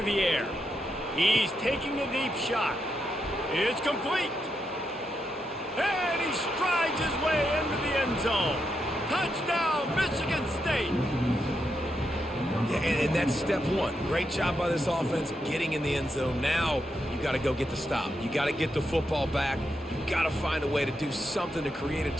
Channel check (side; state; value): both; normal; correlation 0.83